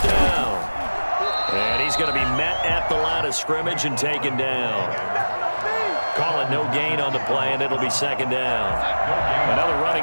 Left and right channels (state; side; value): inverted; both; correlation -1.00